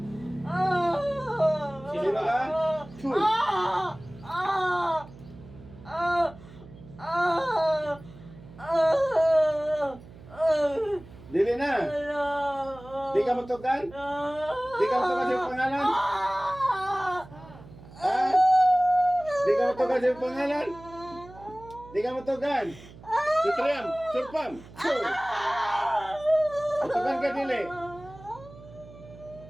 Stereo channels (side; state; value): right; noise; hum, 19 dB below the sound